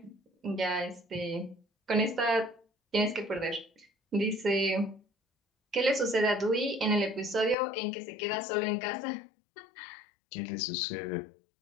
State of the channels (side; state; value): right; drops out; at 7.6 s